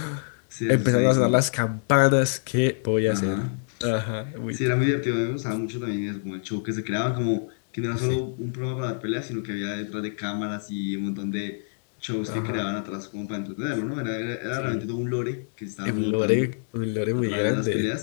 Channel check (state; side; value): silent; right; digital silence